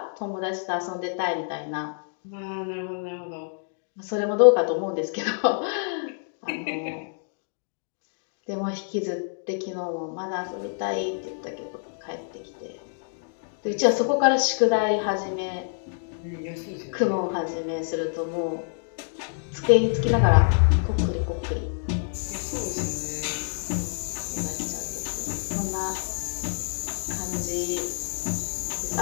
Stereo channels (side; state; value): right; silent; digital silence